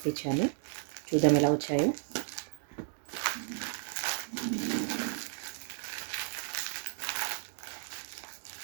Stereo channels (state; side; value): silent; left; 55 dB below the other